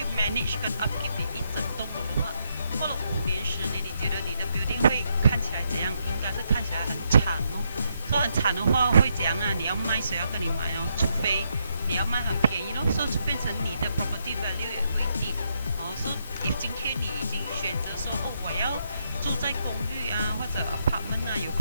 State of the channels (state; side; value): inverted; both; correlation -0.78